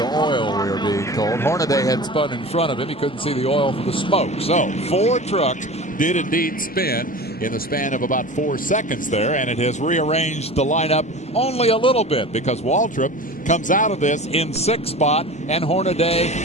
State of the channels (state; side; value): normal; both; correlation 0.35